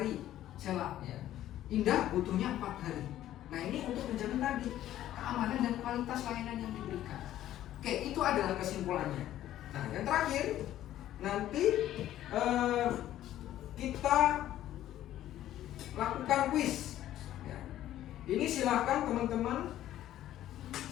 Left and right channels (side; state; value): right; quieter; 12.9 dB